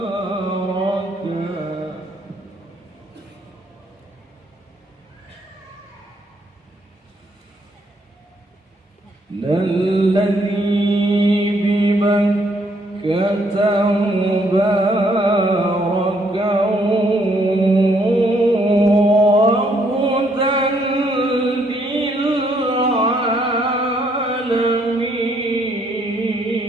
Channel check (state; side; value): normal; both; correlation 0.70